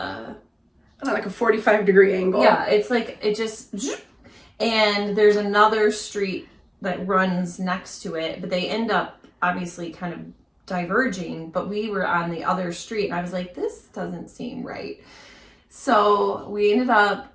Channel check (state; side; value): identical; both; correlation 1.00